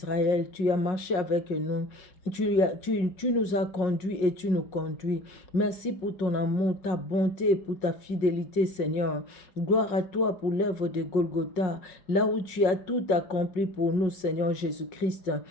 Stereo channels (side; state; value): right; late; 5.4 ms